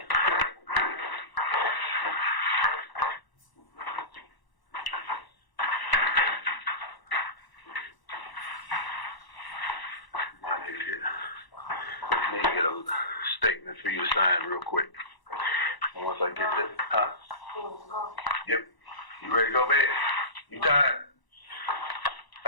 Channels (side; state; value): right; late; 1.0 ms